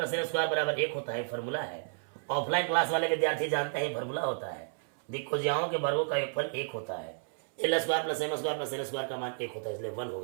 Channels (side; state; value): left; silent; 56 dB below the other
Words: N square बराबर 1 होता है, फॉर्मूला है। ऑफलाइन क्लास वाले विद्यार्थी जानते हैं फॉर्मूला होता है। दिक् को ज्याओं के वर्गों का योगफल 1 होता है। L square plus M square plus N square का मान 1 होता है, इसलिए 1